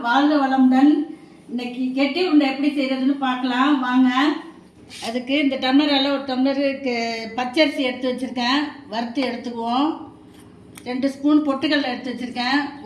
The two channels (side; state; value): both; identical; correlation 1.00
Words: வாழ்க வளமுடன். இன்னைக்கு கெட்டி உருண்டை எப்படி செய்யறதுன்னு பார்க்கலாம் வாங்க. அதுக்கு இந்த டம்ளரால் ஒரு டம்ளருக்கு பச்சரிசி எடுத்து வச்சுருக்கேன், வறுத்து எடுத்துக்குவோம். 2 ஸ்பூன் பொட்டுக்கடலை எடுத்து வச்சுருக்கேன்,